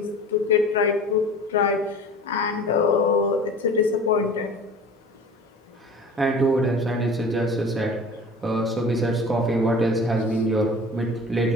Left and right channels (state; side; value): normal; both; correlation 0.41